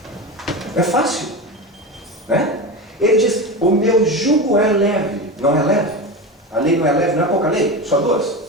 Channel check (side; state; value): both; normal; correlation 0.23